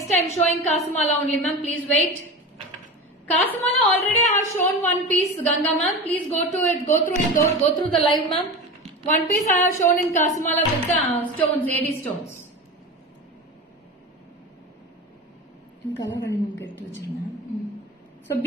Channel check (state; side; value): normal; both; correlation 0.28